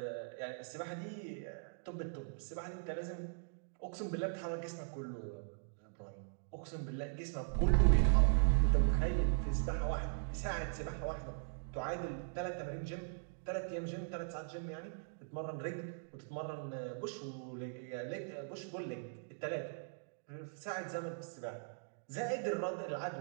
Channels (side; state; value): left; silent; digital silence